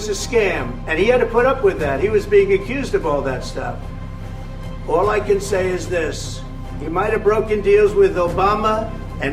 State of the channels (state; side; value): identical; both; correlation 1.00